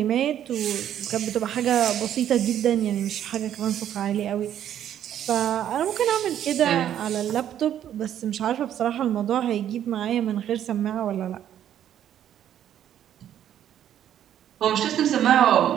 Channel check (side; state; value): left; quieter; 10.6 dB